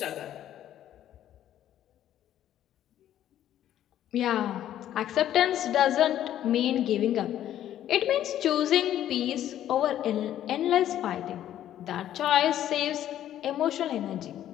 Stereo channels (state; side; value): quieter; right; 11.7 dB